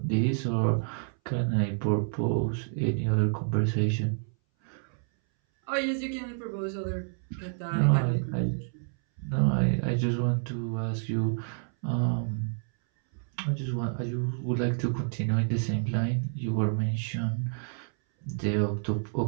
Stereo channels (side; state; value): left; silent; 59 dB below the other